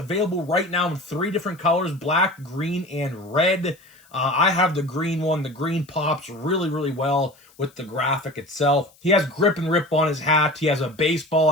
right now in 3 different colors: black, green, and red. I have the green one. The green pops really, really well with the graphic itself. He has Grip and Rip on his hat. He has a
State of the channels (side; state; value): left; noise; hiss, 29 dB below the sound